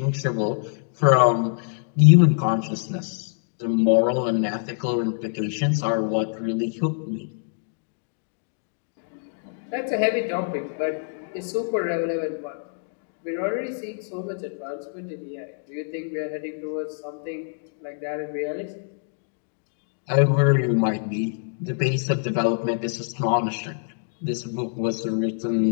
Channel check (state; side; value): silent; right; digital silence